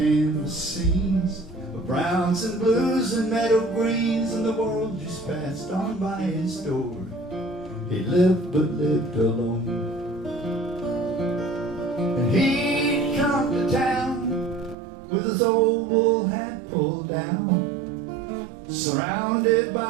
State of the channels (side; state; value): left; drops out; at 14.8 s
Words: scenes of browns and blues and meadow greens, and the world just passed on by his door. He lived but lived alone. And he'd come to town with his old wool hat pulled down, surrounded